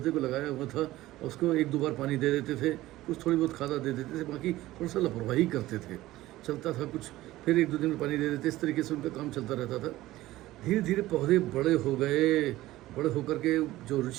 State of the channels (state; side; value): quieter; left; 16.5 dB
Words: को लगाया हुआ था और उसको 1-2 बार पानी दे देते थे, कुछ थोड़ी बहुत खादा दे देते थे, बाकी थोड़ा सा लापरवाही करते थे। चलता था कुछ, फिर 1-2 दिन में पानी दे देते, इस तरीके से उनका काम चलता रहता था। धीरे धीरे पौधे बड़े हो गए। बड़े होकर के जो